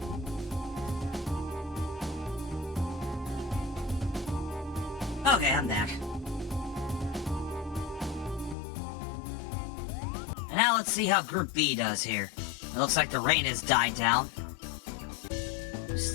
Okay, I'm back. Now let's see how Group B does here. It looks like the rain has died down.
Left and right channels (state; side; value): drops out; right; at 8.6 s